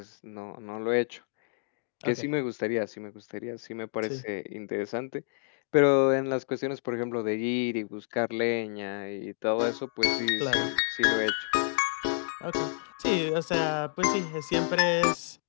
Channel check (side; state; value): right; silent; digital silence